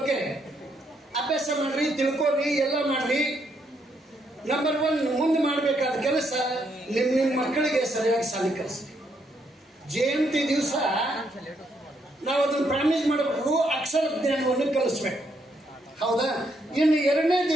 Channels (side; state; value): both; normal; correlation 0.75